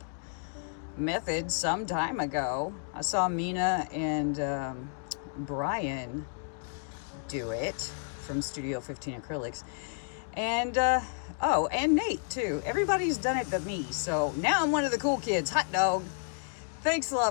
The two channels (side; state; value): right; silent; digital silence